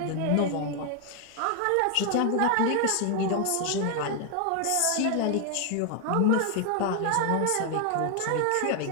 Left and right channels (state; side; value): different; both; correlation 0.01